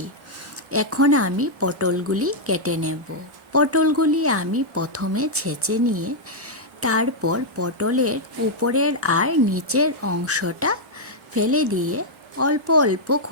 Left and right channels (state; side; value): normal; both; correlation -0.05